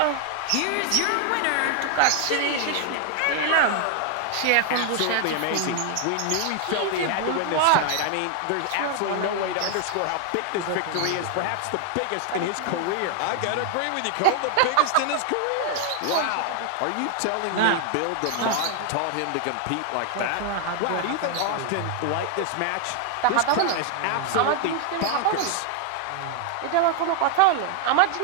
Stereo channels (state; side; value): different; both; correlation 0.00